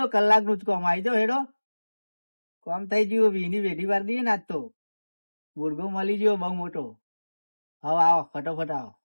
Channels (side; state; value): both; inverted; correlation -1.00